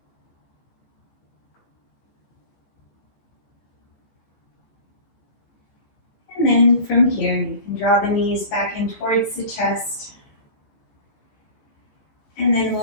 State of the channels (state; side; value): late; right; 15 ms